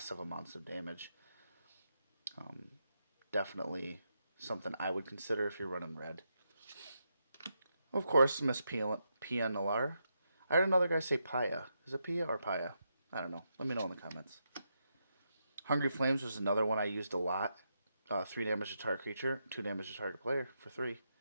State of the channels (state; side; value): inverted; both; correlation -0.83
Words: amounts of damage. Definitely something I would consider if you're running red. Of course, Miss Pia Nalar. I heard another guy say Paya. Is it Pia or Paya? I don't know. Let me know in the comments. Hungry Flames was another one I used a lot. 3 damage to target creature, 2 damage to target player for 3.